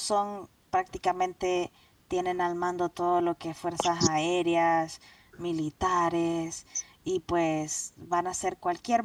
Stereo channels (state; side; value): identical; both; correlation 1.00